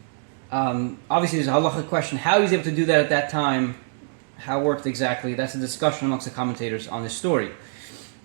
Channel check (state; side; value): silent; left; digital silence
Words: Obviously, there's a halachic question: how he was able to do that at that time, how it worked exactly. That's a discussion amongst the commentators on this story.